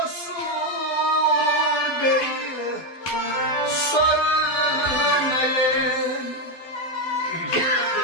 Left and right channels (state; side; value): late; right; 12 ms